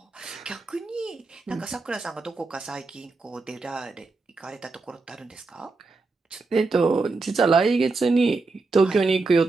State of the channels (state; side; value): quieter; left; 3.8 dB